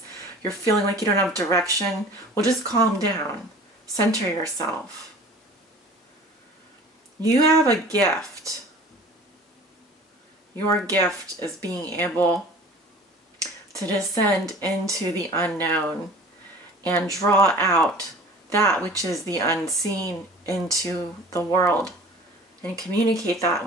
you're feeling like you don't have direction, well, just calm down. Center yourself. You have a gift. Your gift is being able to descend into the unknown and draw out that which is the unseen into the world and communicate that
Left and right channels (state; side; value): normal; both; correlation 0.44